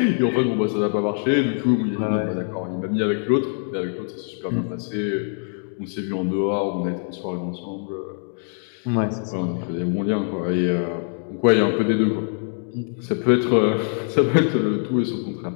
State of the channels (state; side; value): silent; right; 57 dB below the other